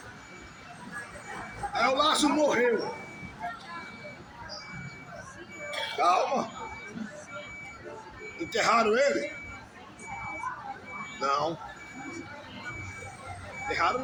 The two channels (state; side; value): identical; both; correlation 1.00